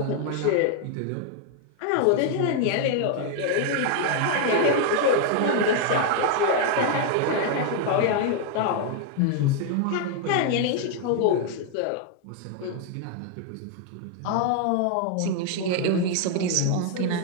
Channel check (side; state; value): both; different; correlation 0.00